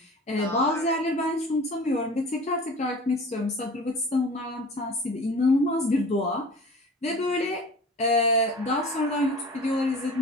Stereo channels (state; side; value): normal; both; correlation 0.40